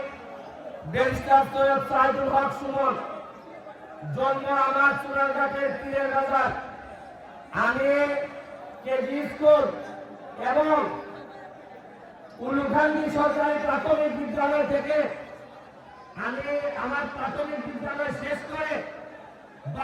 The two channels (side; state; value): both; identical; correlation 1.00